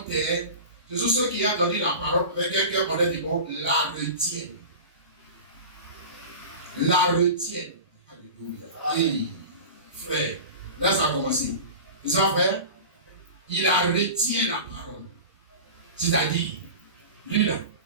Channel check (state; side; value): inverted; both; correlation -0.33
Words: terre, ce sont ceux qui ont entendu la parole avec un cœur honnête et bon, la retiennent. La retiennent. Alléluia. Hey, frère, là ça a commencé. C'est ça, frère? Il a retient la parole. C'est-à-dire, lui là,